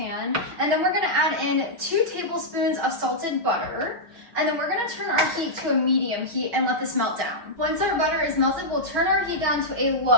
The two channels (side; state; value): left; late; 5.9 ms